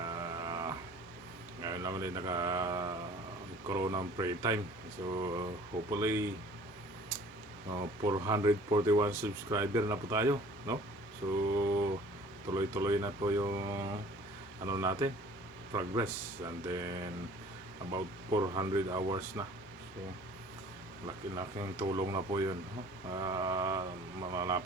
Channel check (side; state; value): both; normal; correlation 0.50